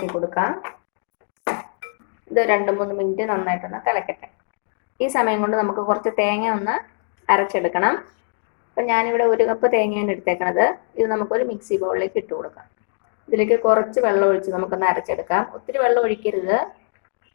കൊടുക്കാം. ഇത് 2-3 മിനിറ്റ് നന്നായിട്ടൊന്ന് തിളക്കട്ടെ. ഈ സമയം കൊണ്ട് നമുക്ക് കുറച്ച് തേങ്ങ ഒന്ന് അരച്ചെടുക്കണം. അപ്പം ഞാനിവിടെ 1 കപ്പ് തേങ്ങയാണ് എടുത്തേക്കണത്. ഇത് നമുക്കൊരു മിക്സി ബൗളിലേക്ക് ഇട്ട് കൊടുക്കാം. ഇതിലേക്ക് കുറച്ച് വെള്ളം ഒഴിച്ച് നമുക്കൊന്ന് അരച്ചെടുക്കാം. ഒത്തിരി വെള്ളം ഒഴിക്കരുത്,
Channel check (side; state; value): right; silent; digital silence